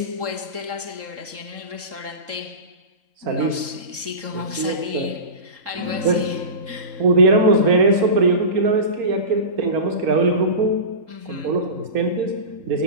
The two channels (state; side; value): late; left; 3.7 ms